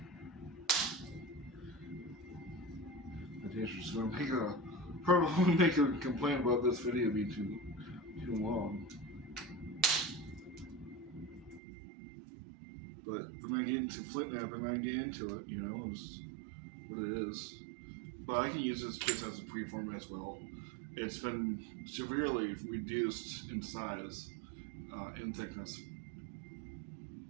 documentation. Just going to probably make a complaint about this video being too long. But when I get into FlintNap and I get into it, it's what it is. But I can use this just as a preform as well. It's been severely reduced in size, in thickness.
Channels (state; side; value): drops out; left; at 11.6 s